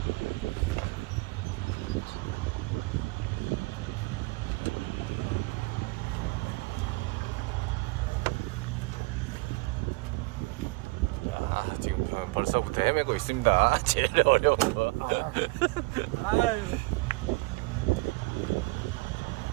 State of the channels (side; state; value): left; quieter; 26.3 dB